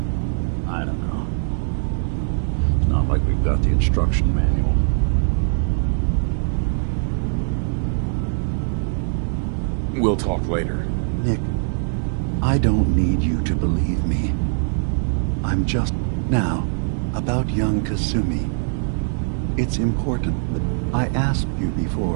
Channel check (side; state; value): left; silent; digital silence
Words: I don't know. It's not like we've got the instruction manual. We'll talk later. Nick, I don't need you to believe me. I'm just... Now, about young Kasumi. It's important that I asked you